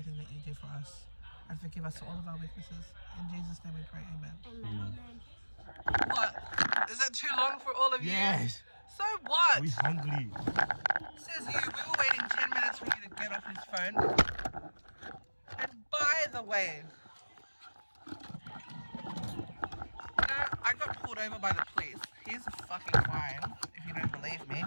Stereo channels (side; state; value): both; inverted; correlation -1.00